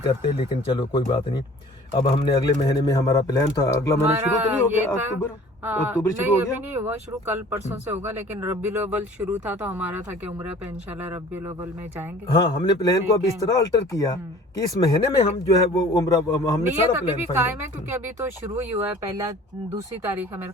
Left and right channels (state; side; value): normal; both; correlation 0.49